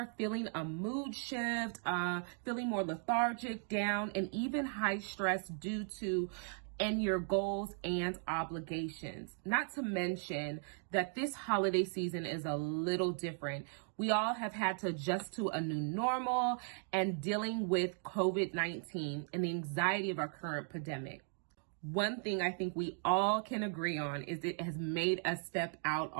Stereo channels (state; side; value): silent; left; 53 dB below the other